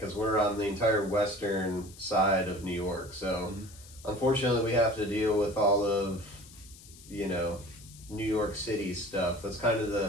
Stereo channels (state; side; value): noise; left; hiss, 20 dB below the sound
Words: we're on the entire western side of New York. So unfortunately, we have to deal with all of New York City stuff. That's kind